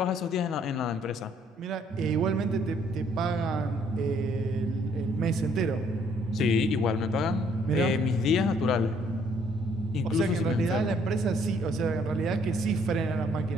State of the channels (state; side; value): normal; both; correlation 0.64